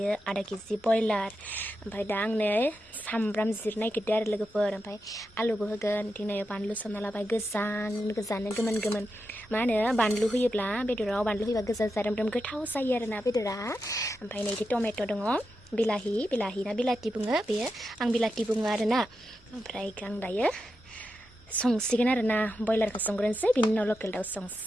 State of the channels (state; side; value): normal; both; correlation 0.88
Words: आधा केजि बयलार ओमफ्राय दा आंनो सामब्राम जिरनो नागिरदों आरो लोगोफोर ओमफ्राय आलुबो होगोन दिनै बानलु सोमना लाबाय गोजानो गोमोन गोमोन मा होनो बानलु होयोब्ला बेदराव बानलु होयोबा गोजा जारोम गोथाव जायो आरोना बेदरा ओमफ्राय नैदि टमेट' दङ बिलाहि ना बिलाथि बुङो बेयो आं बिलाथि बुङो आरोना ओमफ्राय आं दायो संसिगोन आरोना बयलारखौ संग्रोनोसै बिनि उनाव लकेल दाउ